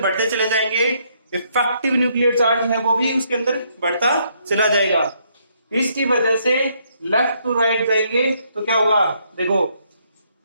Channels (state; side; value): inverted; both; correlation -0.72